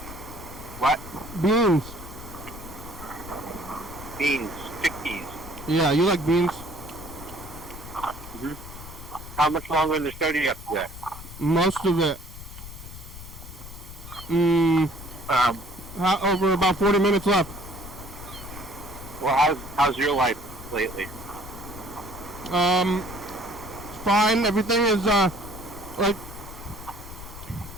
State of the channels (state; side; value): noise; left; rumble, 14 dB below the sound